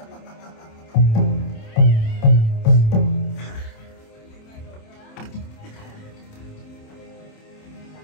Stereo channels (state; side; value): late; right; 27 ms